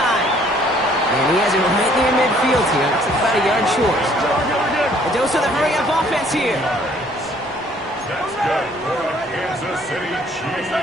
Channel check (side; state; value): both; normal; correlation 0.60